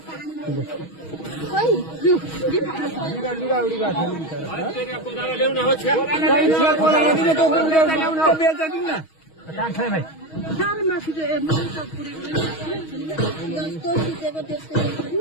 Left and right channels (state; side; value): late; right; 6.3 ms